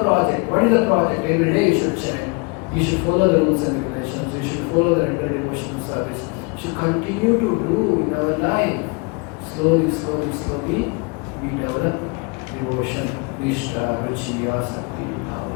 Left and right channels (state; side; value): quieter; right; 30.2 dB